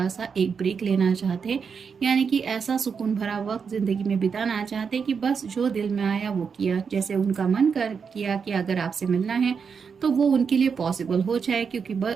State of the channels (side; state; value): left; quieter; 6.1 dB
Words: सा एक ब्रेक लेना चाहते हैं, यानी कि ऐसा सुकून भरा वक्त ज़िंदगी में बिताना चाहते हैं कि बस जो दिल में आया वो किया, जैसे उनका मन कर किया कि अगर आपसे मिलना है तो वो उनके लिए पॉसिबल हो जाए, क्योंकि